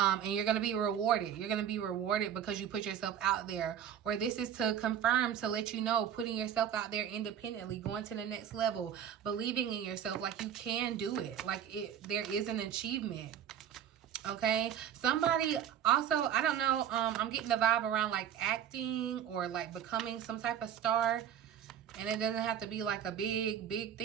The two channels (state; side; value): quieter; left; 9.4 dB